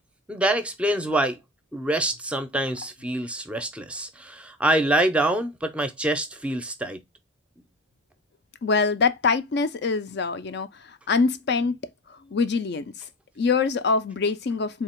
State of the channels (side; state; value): both; normal; correlation 0.32